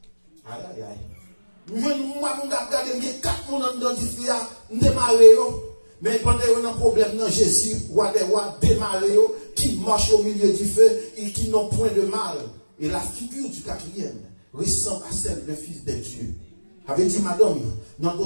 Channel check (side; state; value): both; inverted; correlation -1.00